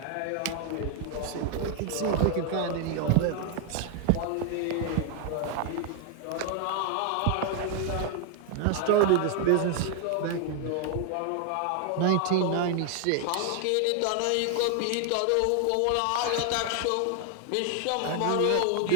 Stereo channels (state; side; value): different; both; correlation 0.00